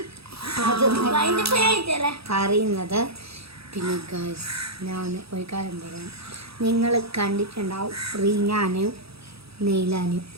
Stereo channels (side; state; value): left; late; 0.77 ms